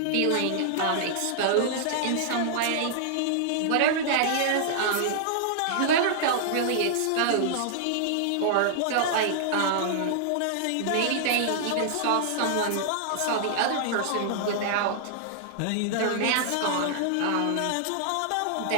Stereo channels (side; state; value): both; different; correlation -0.01